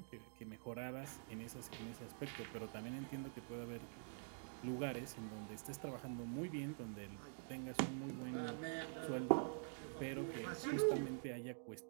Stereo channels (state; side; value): silent; left; digital silence